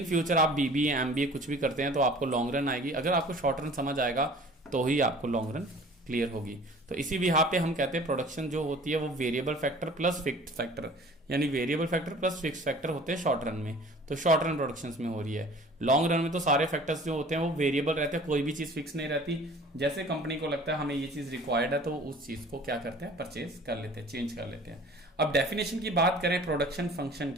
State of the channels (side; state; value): both; normal; correlation 0.47